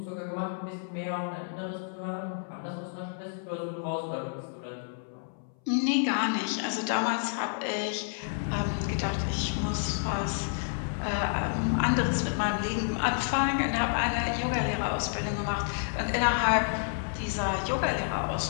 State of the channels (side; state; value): right; silent; 58 dB below the other